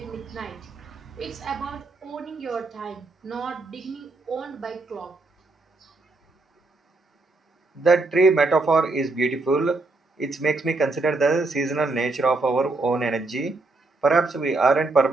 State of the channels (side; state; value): left; quieter; 3.3 dB